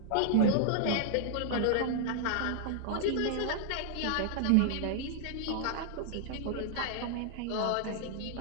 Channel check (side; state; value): both; different; correlation -0.01